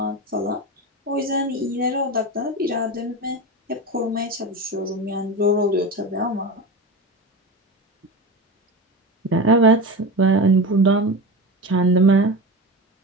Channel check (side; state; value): both; normal; correlation 0.24